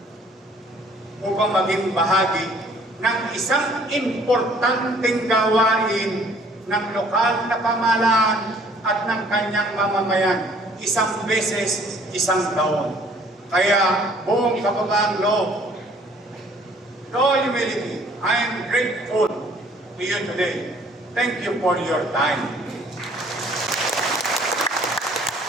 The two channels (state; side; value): normal; both; correlation 0.57